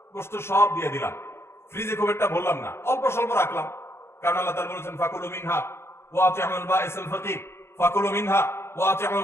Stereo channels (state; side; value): late; right; 0.12 ms